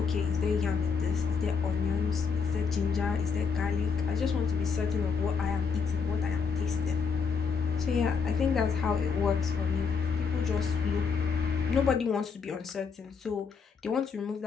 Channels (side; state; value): right; quieter; 5.7 dB